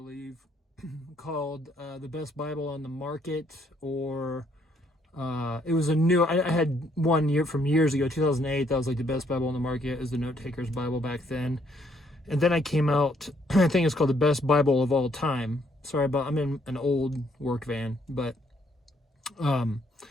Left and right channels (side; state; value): both; normal; correlation 0.69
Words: called The Best Bible on the Market, or it was a new, I had one year from years ago, 2008, that was like the best Bible on the market. It was the Note Taker's Bible back then. And then I came out, I think it's called The Best Bible of All Time. Sorry about, I'm in an old work van, but,